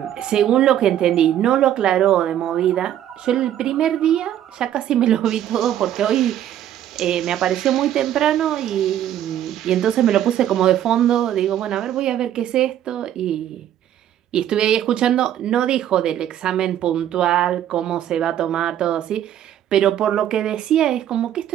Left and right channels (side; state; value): left; quieter; 11.2 dB